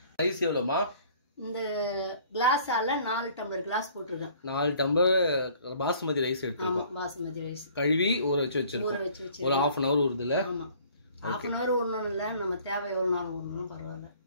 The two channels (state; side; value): inverted; both; correlation -0.55